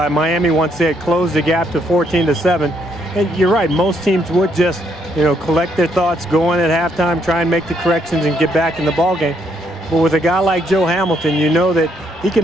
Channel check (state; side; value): normal; both; correlation 0.73